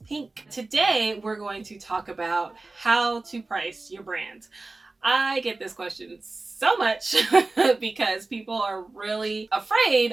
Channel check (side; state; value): left; quieter; 3.3 dB